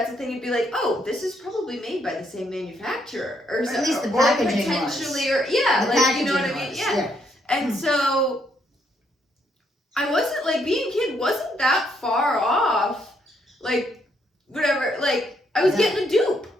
a thing, you'd be like, oh, this is probably made by the same manufacturer, or at least the or packaging potentially, was. or yeah, The like you know what I packaging mean, was, yeah. And so I wasn't like, being a kid wasn't that far off, like whatever, like I was getting a dupe,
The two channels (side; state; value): both; normal; correlation 0.73